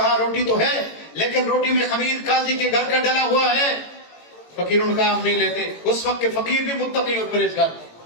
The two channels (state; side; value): late; right; 18 ms